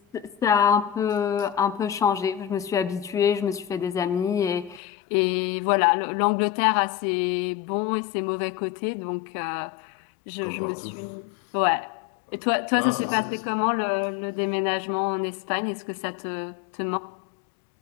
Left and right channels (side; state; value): right; drops out; at 4.8 s